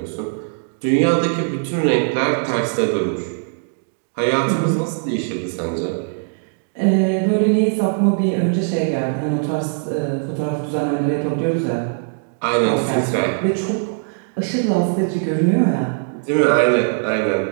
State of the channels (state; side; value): silent; left; digital silence